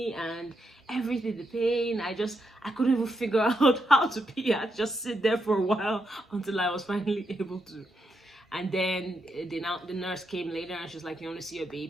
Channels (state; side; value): normal; both; correlation 0.82